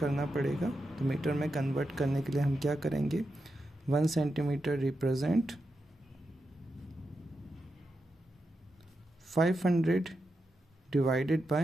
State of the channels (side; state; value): both; normal; correlation 0.88